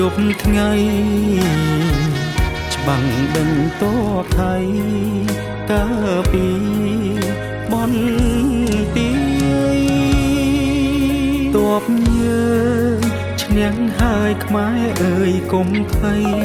ប់ថ្ងៃច្បាំងដេញទ័ពថៃកាពីបនទីទ័ពយើងឈ្នះហើយខ្មែរអើយកុំភ័យ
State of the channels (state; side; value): identical; both; correlation 1.00